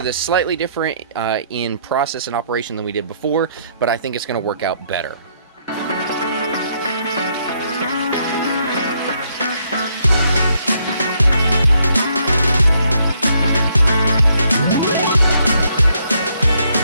this slightly different in process and operation than we did before, but I think it's going to work out better.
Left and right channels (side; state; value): both; inverted; correlation -0.71